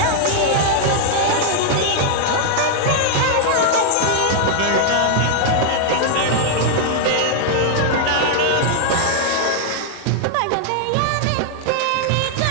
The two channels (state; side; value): different; both; correlation 0.00